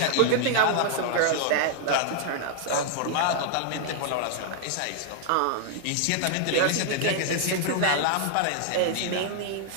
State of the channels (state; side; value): different; both; correlation -0.01